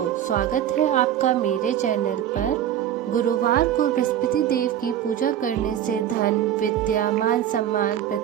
स्वागत है आपका मेरे चैनल पर। गुरुवार को बृहस्पति देव की पूजा करने से धन, विद्या, मान सम्मान,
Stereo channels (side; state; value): left; quieter; 10.7 dB